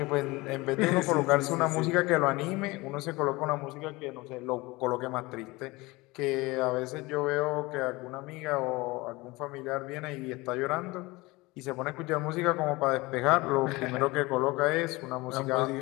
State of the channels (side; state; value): right; quieter; 22.4 dB